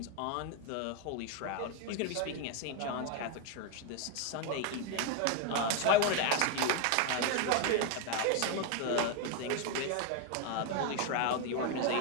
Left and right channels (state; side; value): different; both; correlation 0.01